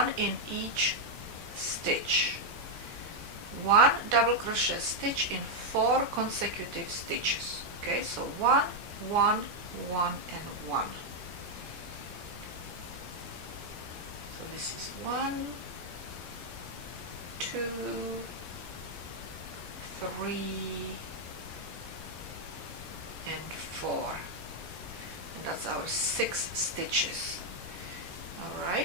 in each stitch. 1 double crochet stitch in 4 consecutive stitches. Okay, so 1, 1, 1 and 1. So this is 1, 2, 3 and 4, and that's our 6 stitches.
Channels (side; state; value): left; late; 13 ms